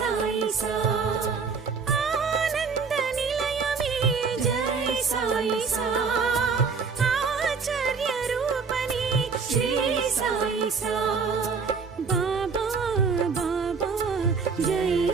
सा आनंद निलय में जय साई सा आचार्य रूपनी श्री साई सा बाबा बाबा जय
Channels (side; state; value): left; quieter; 5.2 dB